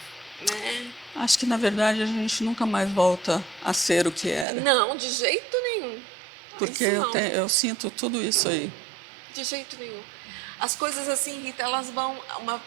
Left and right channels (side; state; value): left; drops out; at 4.5 s